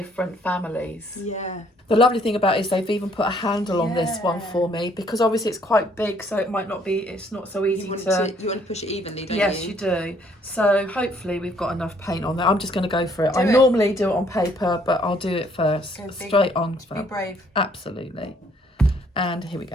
families. Yeah. The lovely thing about it is they've even put a handle on this one Yeah. for me, because obviously it's quite big, so it might not be, it's not so easy You want to... to push it evenly, don't Yes, you? you do. So hopefully we've got enough paint on there. I'm just going to go for it. Do I it. normally do it on paper, but I'll do it first. Go big. Straight on. Be brave. Absolutely. And here we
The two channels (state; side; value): normal; both; correlation 0.64